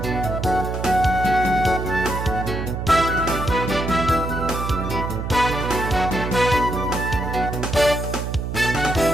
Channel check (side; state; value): right; noise; hum, 4 dB below the sound